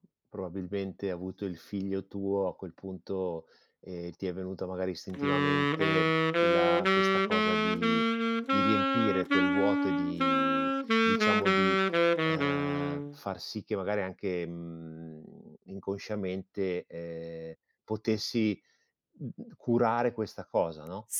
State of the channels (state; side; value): identical; both; correlation 1.00